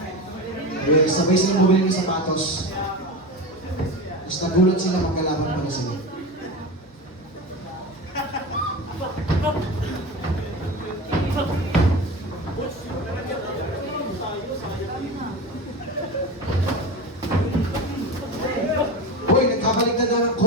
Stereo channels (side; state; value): both; normal; correlation 0.26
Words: Sabay silang bumili ng sapatos. Tapos nagulat sila magkalaban pala sila. Uy, nagkabaliktad na ng